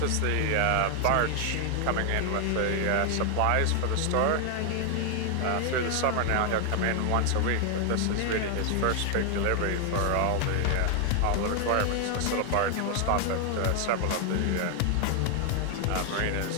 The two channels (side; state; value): both; different; correlation 0.00